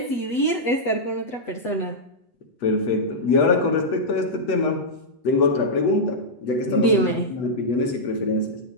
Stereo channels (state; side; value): late; right; 8.1 ms